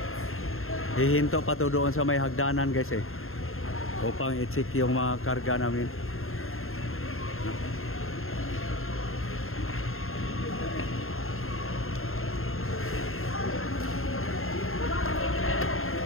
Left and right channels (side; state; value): right; late; 0.61 ms